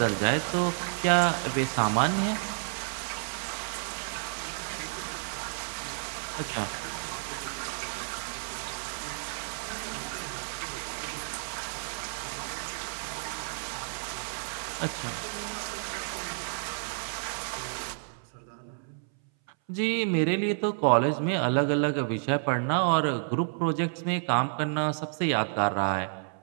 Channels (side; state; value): left; silent; 58 dB below the other